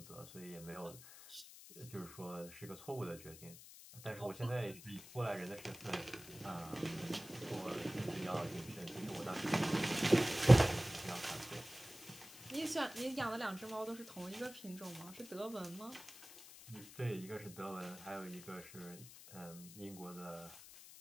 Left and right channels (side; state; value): left; noise; hiss, 16 dB below the sound